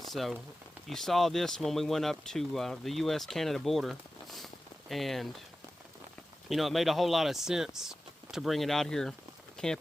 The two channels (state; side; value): normal; both; correlation 0.94